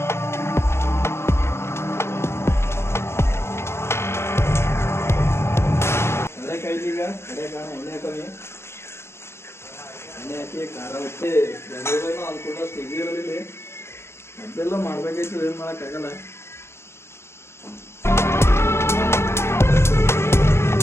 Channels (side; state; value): right; late; 0.12 ms